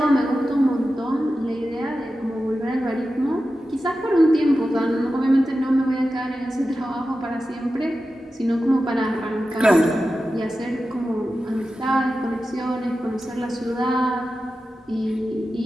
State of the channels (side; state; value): both; normal; correlation 0.93